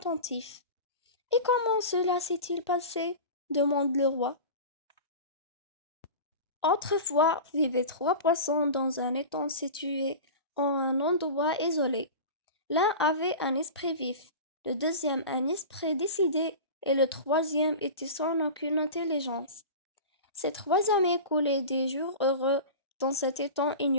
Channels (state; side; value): inverted; both; correlation -0.32